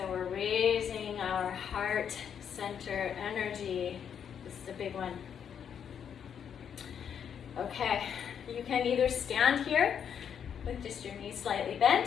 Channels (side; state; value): right; quieter; 8.1 dB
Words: we're raising our heart center energy. This is a big one. Okay, you can either stand here with just your knees slightly bent,